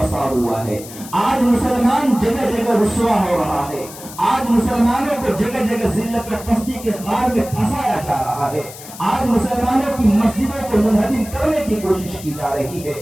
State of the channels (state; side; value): noise; left; hiss, 15 dB below the sound